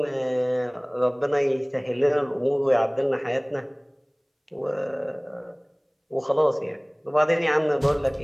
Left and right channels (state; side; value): identical; both; correlation 1.00